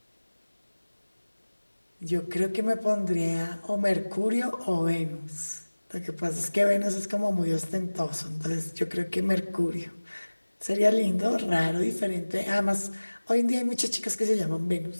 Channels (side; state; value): both; inverted; correlation -1.00